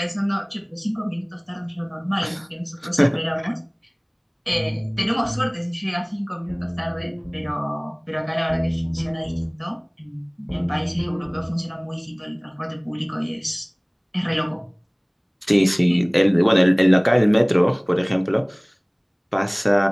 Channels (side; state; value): both; identical; correlation 1.00